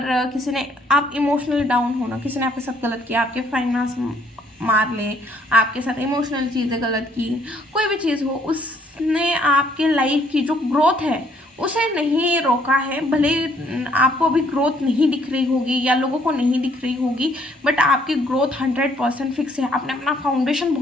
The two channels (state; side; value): normal; both; correlation 0.65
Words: किसी ने आप इमोशनली डाउन हो ना, किसी ने आपके साथ गलत किया, आपके फाइनेंस मार ले, आपके साथ इमोशनल चीज़ें गलत की, कोई भी चीज़ हो, उसने आपके लाइफ की जो ग्रोथ है उसे नहीं रोका है। भले आपको अभी ग्रोथ नहीं दिख रही होगी या लोगों को नहीं दिख रही होगी बट आपकी ग्रोथ 100% फिक्स है। आपने अपना फाउंडेशन